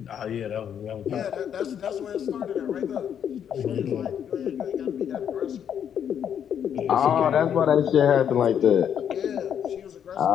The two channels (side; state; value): right; quieter; 8.7 dB